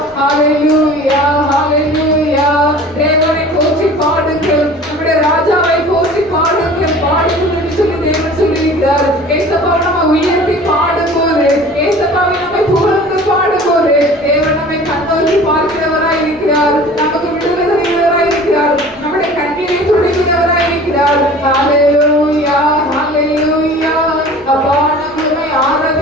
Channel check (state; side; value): normal; both; correlation 0.43